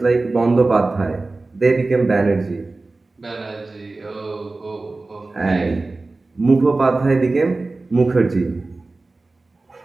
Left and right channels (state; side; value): quieter; left; 3.4 dB